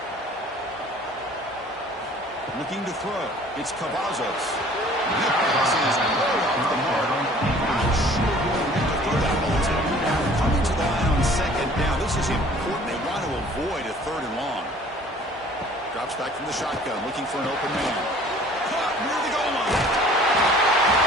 Looking to throw. It's Cavazos. That pass is way off the mark. Not sure who will get to throw that ball to. Coming to the line on second down. This is important. They want to avoid a third and long. Drops back from the shotgun, looking for an open man. Caught near the goal line.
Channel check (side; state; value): both; normal; correlation 0.51